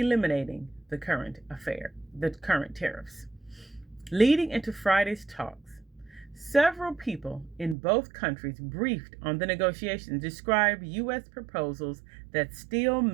the current tariffs. Leading into Friday's talks, several people in both countries briefed on the negotiations described U.S. proposals that still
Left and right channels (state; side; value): drops out; left; at 7.8 s